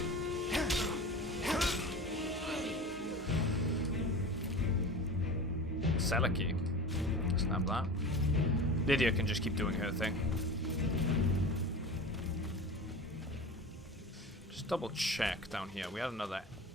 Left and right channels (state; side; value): normal; both; correlation 0.33